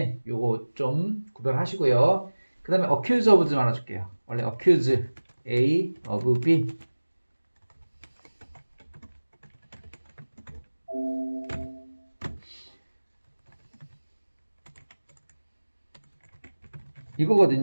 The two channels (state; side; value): inverted; both; correlation -1.00